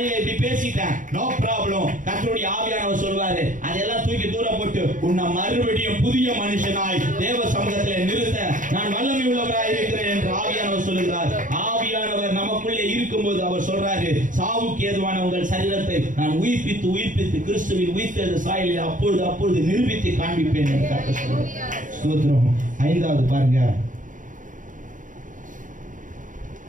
இப்படி பேசிட்டேன், நோ ப்ராப்ளம். கர்த்தருடைய ஆவியானவர் சொல்வாரு, அதெல்லாம் தூக்கி தூரம் போட்டு உன்னை மறுபடியும் புதிய மனுஷனாய் தேவ சமூகத்திலே நிறுத்த நான் வல்லமை உள்ளவராய் இருக்கிறேன் என்று ஆவியானவர் சொல்லுகிறார். ஆவியானவர் நமக்குள்ளே இருக்கும்போது அவர் சொல்றாரு, சாவுக்கு ஏதுவான உங்கள் சரீரத்தை நான் உயிர்ப்பித்து கிறிஸ்துவின் உயிர்த்தெழுந்த சாயலில் அப்பொழுது நிரூபித்து காண்பிப்பேன் என்று கர்த்தர் சொல்றார். ஸ்தோத்திரம். 5வது பாருங்க,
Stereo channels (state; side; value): late; left; 0.38 ms